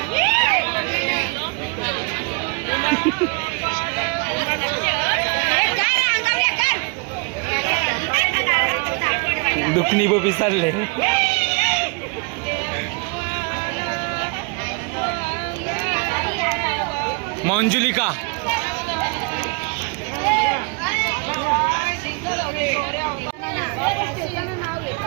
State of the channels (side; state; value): left; quieter; 32.6 dB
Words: दुखणी बबी चालले. मंजुलिका